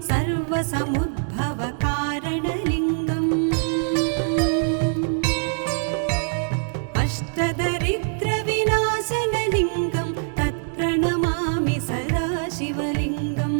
सर्वसमुद्भवकारणलिङ्गम् अष्टदरिद्रविनाशनलिङ्गं तत्प्रणमामि सदा शिवलिङ्गम्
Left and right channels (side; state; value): left; silent; digital silence